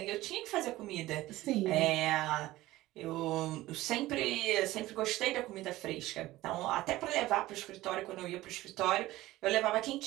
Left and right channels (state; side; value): quieter; left; 17.1 dB